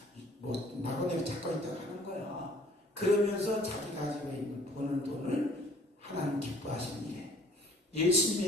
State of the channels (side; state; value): both; normal; correlation 0.55